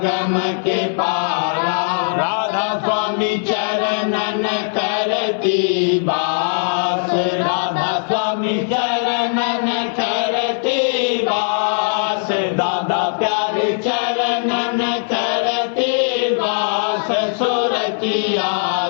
के पारा। राधा स्वामी चरणन करती बास, राधा स्वामी चरणन करती बास। दादा प्यारे चरणन करती बास, सुरतिया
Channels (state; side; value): silent; right; 58 dB below the other